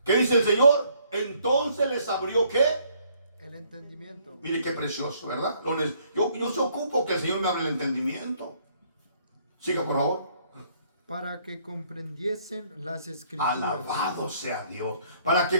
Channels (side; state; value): both; inverted; correlation -0.65